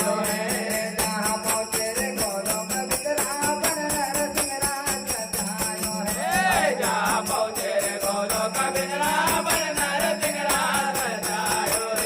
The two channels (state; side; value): identical; both; correlation 1.00